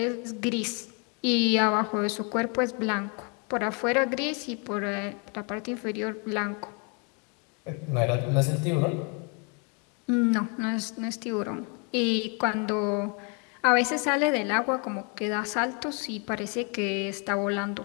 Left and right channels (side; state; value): right; quieter; 35.5 dB